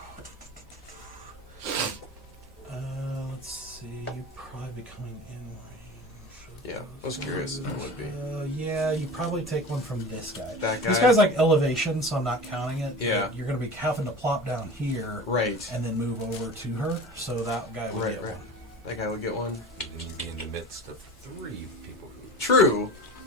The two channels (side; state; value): both; normal; correlation 0.35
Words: Let's see. You'd probably be coming in range. Yeah, I was curious if it would be. Yeah, you probably take one from this guy. That guy? This guy's like elevation, so I'm not counting it. Yeah. You're going to be having to plop down here. Right. And then move over to her, so that guy would get one. That guy would get one. And you'd be in the midst of 3 people who. True.